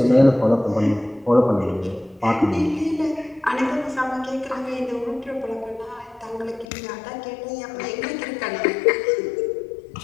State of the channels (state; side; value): drops out; right; at 6.7 s